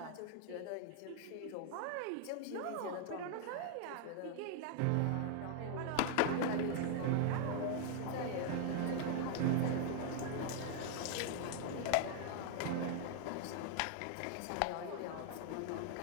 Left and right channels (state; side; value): different; both; correlation 0.00